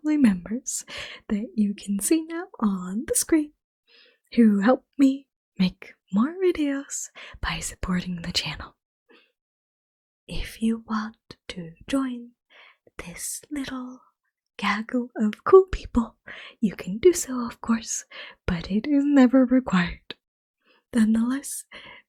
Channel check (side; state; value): both; identical; correlation 1.00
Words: members that you can see now on the screen who help me make more videos by supporting the channel. If you want to join this little gaggle of cool people, you can do so, of course, but it is never required. Nonetheless,